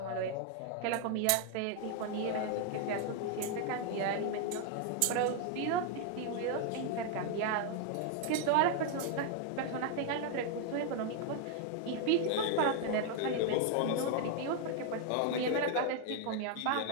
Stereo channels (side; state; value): both; different; correlation 0.00